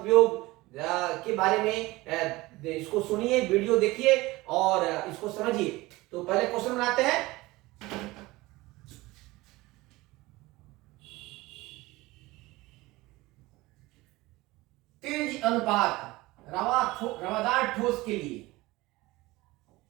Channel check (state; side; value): quieter; left; 20.3 dB